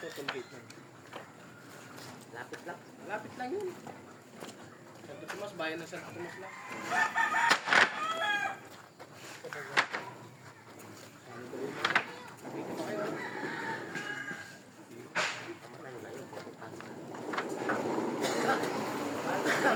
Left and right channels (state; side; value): identical; both; correlation 1.00